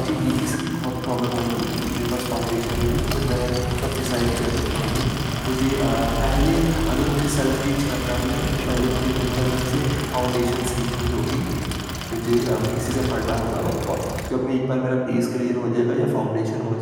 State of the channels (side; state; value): both; identical; correlation 1.00